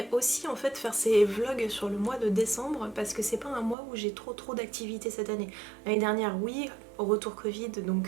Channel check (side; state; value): left; drops out; at 3.8 s